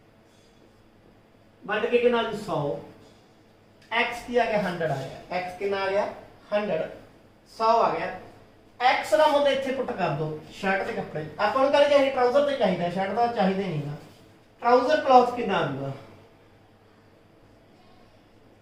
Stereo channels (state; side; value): identical; both; correlation 1.00